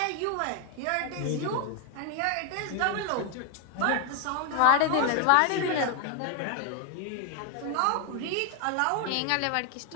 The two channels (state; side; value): different; both; correlation 0.01